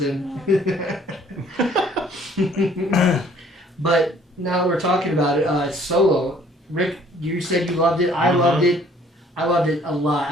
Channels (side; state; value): both; normal; correlation 0.58